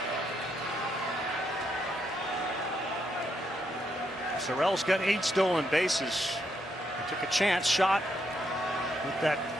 Sorrell's got 8 stolen bases. He took a chance shot with that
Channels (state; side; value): normal; both; correlation 0.78